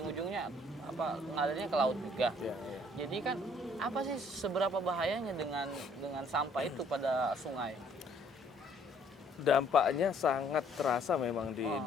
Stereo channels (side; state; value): both; normal; correlation 0.62